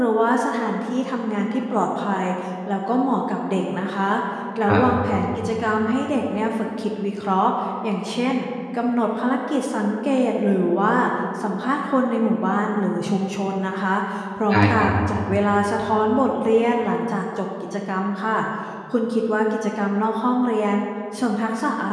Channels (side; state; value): both; identical; correlation 1.00